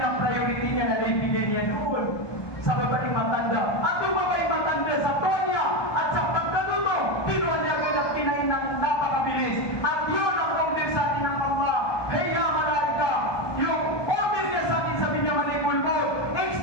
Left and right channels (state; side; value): late; right; 1.2 ms